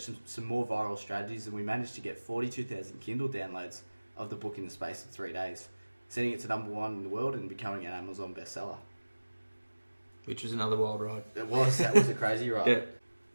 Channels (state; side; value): inverted; both; correlation -1.00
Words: some more viral strategies, and we managed to get 42,000 Kindle downloads of the book in the space of 3 days, sending it to #1 in the world and becoming an Amazon bestseller. Which was another wild ride. That was a crazy ride. Yeah.